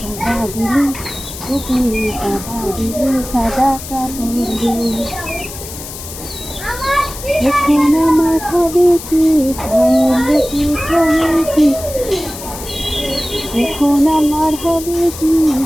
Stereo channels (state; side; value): noise; left; hiss, 12 dB below the sound